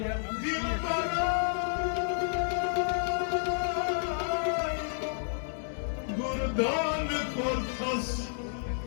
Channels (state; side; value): silent; right; digital silence